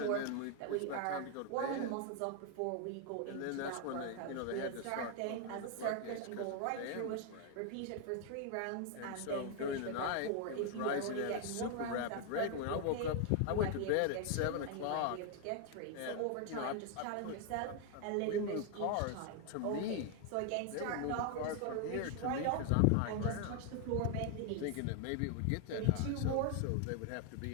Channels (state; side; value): different; both; correlation 0.00